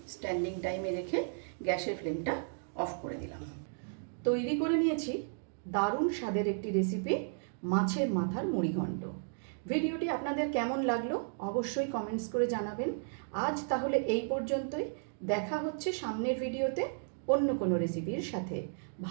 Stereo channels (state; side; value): silent; left; digital silence